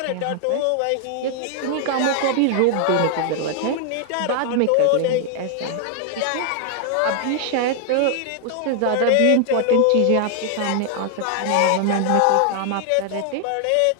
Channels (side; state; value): both; different; correlation 0.00